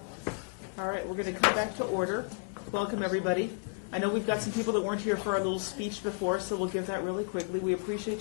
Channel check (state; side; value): silent; right; 56 dB below the other